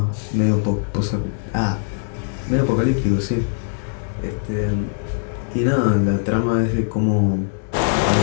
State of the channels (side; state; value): right; silent; digital silence